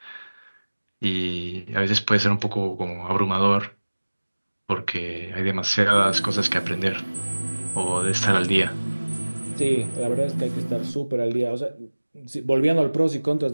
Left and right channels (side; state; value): both; inverted; correlation -1.00